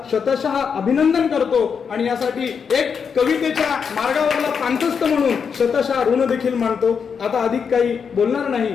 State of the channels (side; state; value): right; quieter; 6.4 dB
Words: शतशः अभिनंदन करतो आणि यासाठी एक कवितेच्या मार्गावरला पांथस्थ म्हणून शतशः ऋण देखील मानतो. आता अधिक काही बोलणार नाही.